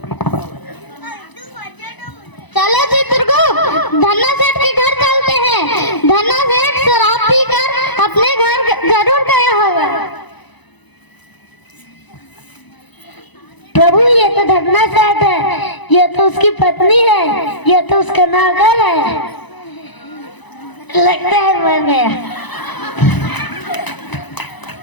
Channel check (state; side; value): late; right; 1.0 ms